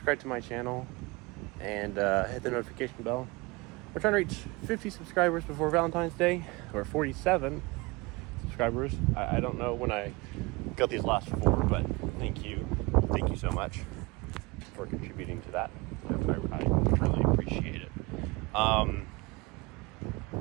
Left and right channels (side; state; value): left; quieter; 24.6 dB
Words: to my channel, and hit the notification bell. We're trying to reach 50 subscribers before Valentine's Day, or 47 subscribers. I don't know when I got these last 4, but thank you so much for contributing to that. I really appreciate it.